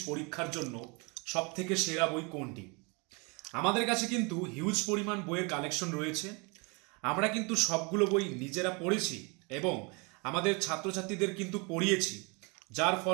পরীক্ষার জন্য সবথেকে সেরা বই কোনটি। আমাদের কাছে কিন্তু হিউজ পরিমাণ বইয়ের কালেকশন রয়েছে। আমরা কিন্তু সবগুলো বই নিজেরা পড়েছি এবং আমাদের ছাত্রছাত্রীদের কিন্তু পড়িয়েছি, যার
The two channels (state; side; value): quieter; left; 30.6 dB